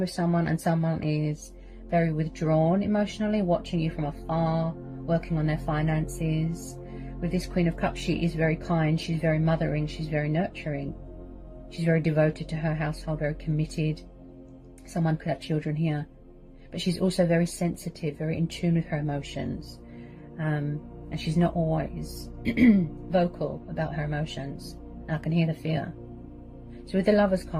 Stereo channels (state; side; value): identical; both; correlation 1.00